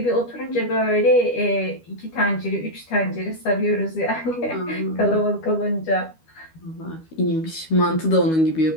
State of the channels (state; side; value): late; right; 12 ms